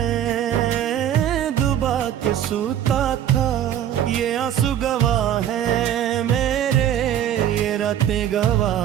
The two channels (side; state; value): left; quieter; 10.5 dB